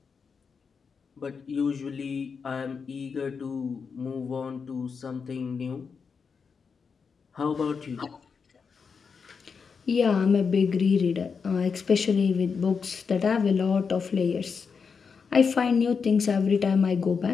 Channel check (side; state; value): right; quieter; 5.7 dB